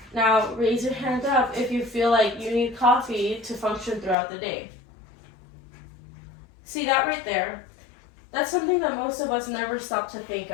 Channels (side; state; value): right; drops out; at 4.2 s